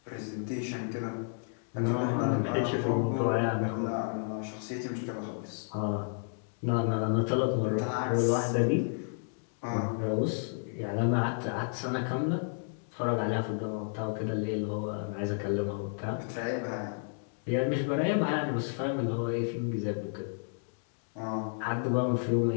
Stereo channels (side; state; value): right; silent; digital silence